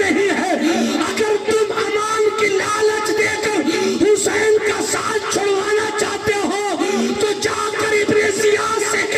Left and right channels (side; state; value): both; identical; correlation 1.00